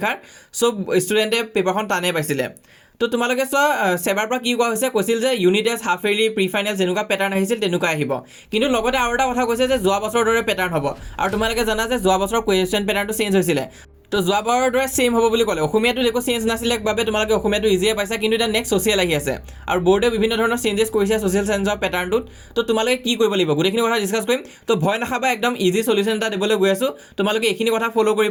চব ষ্টুডেণ্টে পেপাৰখন টানেই পাইছিলে। তো তোমালোকে চোৱা, চেবাৰ পৰা কি কোৱা হৈছে, কৈছিল যে unit test, half yearly, pre final যেনেকুৱা পেটাৰ্ণ আহিছিল তেনেকুৱা আহিব। কিন্তু লগতে আৰু এটা কথা কৈছে যে যোৱা বছৰৰ দৰে পেটাৰ্ণ হ'ব। আৰু তোমালোকে জানা যে যোৱা বছৰৰ কুৱেশ্যন পেটাৰ্ণটো চেঞ্জ হৈছিলে। তো যোৱাবাৰৰ দৰে ছেইম হ'ব বুলি ক'লে। অসমীয়াটো একো চেঞ্জ নাছিলে বাবে তোমালোকে অসমীয়াটো ইজিয়ে পাইছা, কিন্তু এতিয়া নেক্সট ছ'চিয়েল আহি আছে আৰু বৰ্ডে বিভিন্ন ধৰণৰ চেঞ্জেছ কৰিছে ছ'চিয়েল চায়েন্সৰ পেটাৰ্ণটোত। তো তোমালোকে কি কৰিব লাগিব, গোটেইখিনি কথা ডিছকাছ কৰিম। তো ভয় নাখাবা, একদম ইজি চলিউশ্যন এটা দিবলৈ গৈ আছোঁ। তোমালোকে এইখিনি কথা ফ'ল'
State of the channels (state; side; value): identical; both; correlation 1.00